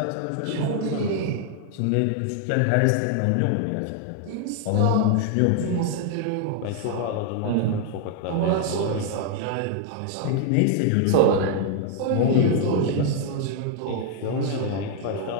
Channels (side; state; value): both; different; correlation 0.00